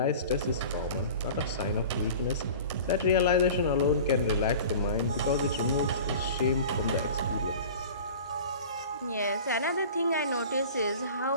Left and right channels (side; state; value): both; inverted; correlation -0.39